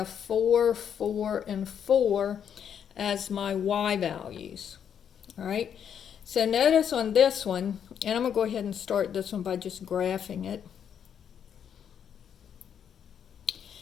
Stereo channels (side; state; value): right; quieter; 8.4 dB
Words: 4, 4, and 4 as my y values, all right? So notice on this one, and I'm going to go ahead and start this one by just graphing it.